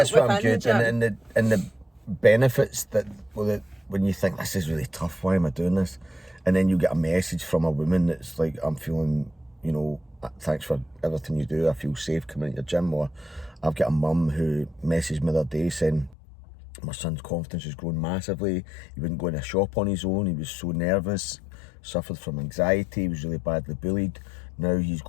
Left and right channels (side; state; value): right; drops out; at 16.2 s